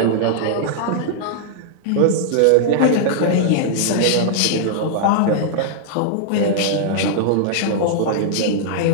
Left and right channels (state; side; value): different; both; correlation -0.01